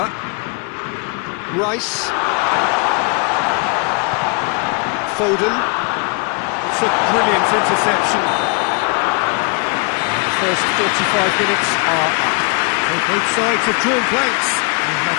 Rice. Foden. It's a brilliant interception. The first 45 minutes are up. So both sides have drawn blanks and have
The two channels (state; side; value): quieter; right; 34.2 dB